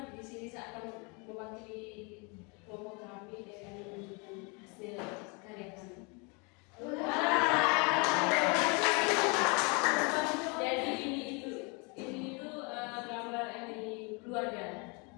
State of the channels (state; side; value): quieter; right; 31.4 dB